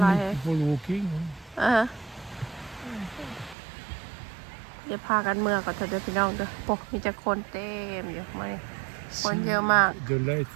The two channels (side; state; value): left; drops out; at 3.6 s